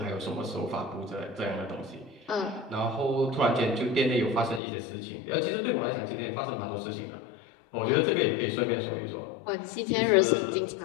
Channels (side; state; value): right; drops out; at 4.6 s